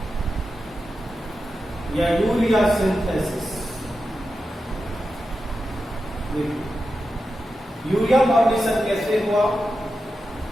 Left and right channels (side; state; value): both; normal; correlation 0.90